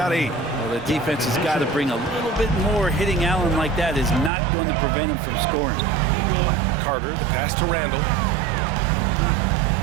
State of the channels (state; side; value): drops out; left; at 4.3 s